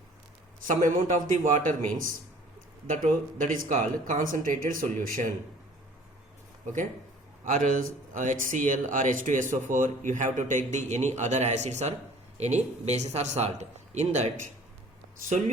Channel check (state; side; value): normal; both; correlation 0.51